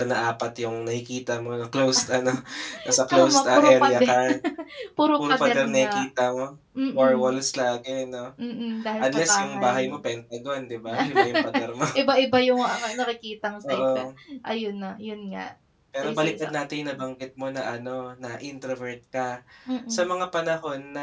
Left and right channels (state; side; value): identical; both; correlation 1.00